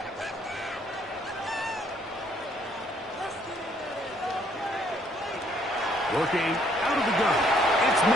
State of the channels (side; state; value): both; normal; correlation 0.66